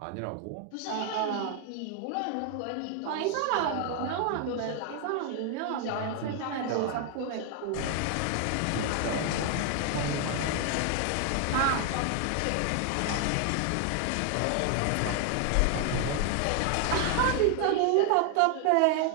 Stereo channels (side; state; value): both; different; correlation 0.00